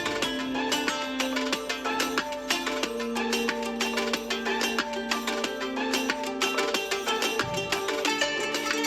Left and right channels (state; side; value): identical; both; correlation 1.00